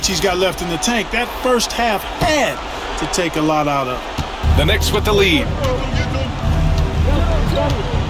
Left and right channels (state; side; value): identical; both; correlation 1.00